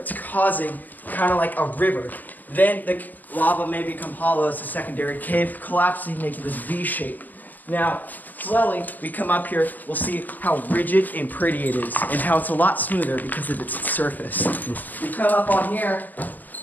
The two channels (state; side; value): late; right; 0.086 ms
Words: causing kind of like a river. Then the lava may become hollow as a secondary cave, collapsing, making this V shape. Now, slowly, we come up here, we'll see how rigid and pretty it is, and how it's a lot smoother because of its surface. We come up on here,